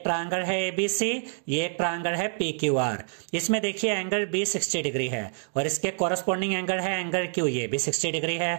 ट्रायंगल है ABC, ये एक ट्रायंगल है PQR। इसमें देखिए एंगल B 60 डिग्री है और इसके कोरस्पोंडिंग एंगल है एंगल Q, ये भी 60 डिग्री है।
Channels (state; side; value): silent; left; digital silence